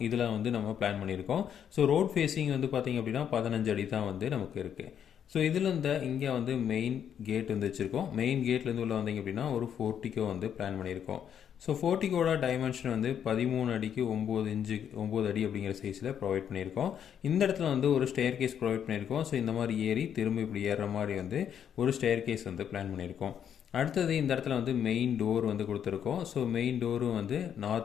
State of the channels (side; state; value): right; quieter; 8.8 dB